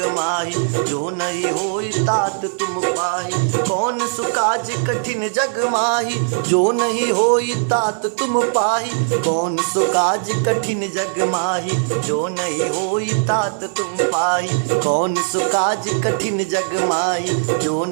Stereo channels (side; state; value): left; silent; digital silence